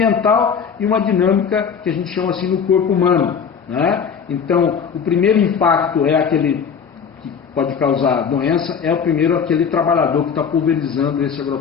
e uma dinâmica que a gente chama assim no corpo humano, né? Então, o primeiro impacto é aquele que pode causar doença, é o primeiro aquele trabalhador que está pulverizando esse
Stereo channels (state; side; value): quieter; right; 6.7 dB